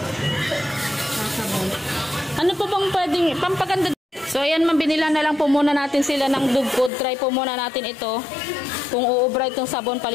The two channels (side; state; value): right; drops out; at 6.9 s